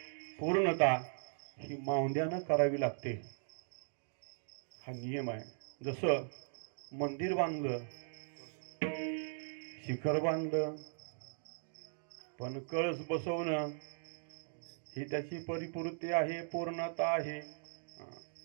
पूर्णता ही माऊंद्यानं करावी लागते, हा नियम आहे. जसं मंदिर बांधलं, शिखर बांधलं, पण कळस बसवणं ही त्याची परिपूर्ती आहे, पूर्णता आहे.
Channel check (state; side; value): silent; left; digital silence